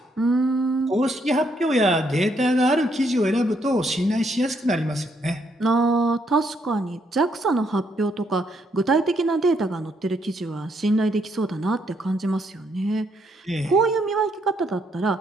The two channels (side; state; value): both; normal; correlation 0.74